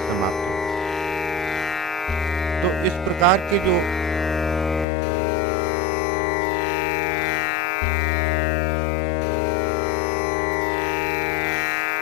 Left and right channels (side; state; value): right; drops out; at 4.9 s